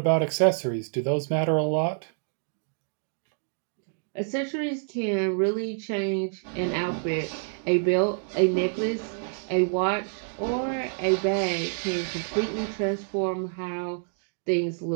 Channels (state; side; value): silent; left; digital silence